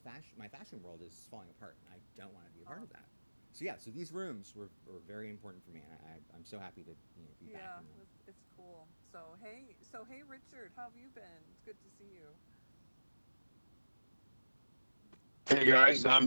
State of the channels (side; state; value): both; inverted; correlation -1.00